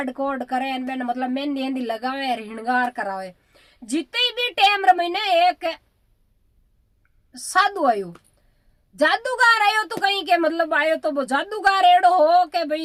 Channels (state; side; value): identical; both; correlation 1.00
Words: कोड करे बेन मतलब मेहंदी हेंदी लगावे हिणगार करावे। जिते भी टेम रे महीने एक साधु आयो जादूगर आयो तो कहीं के मतलब आयो तो वो जादूगर एड़ो हो के